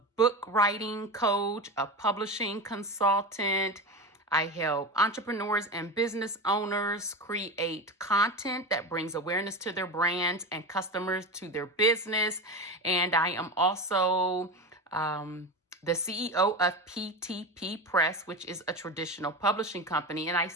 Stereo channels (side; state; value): both; normal; correlation 0.23